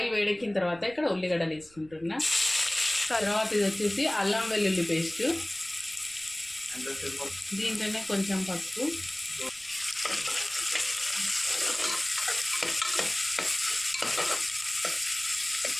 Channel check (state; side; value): noise; right; rumble, 27 dB below the sound